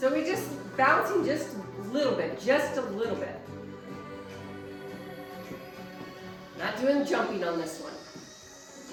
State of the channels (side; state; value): both; identical; correlation 1.00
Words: we're just bouncing just a little bit, Not doing jumping on this one.